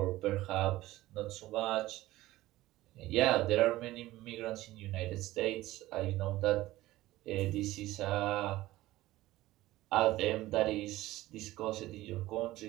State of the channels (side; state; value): left; quieter; 16.9 dB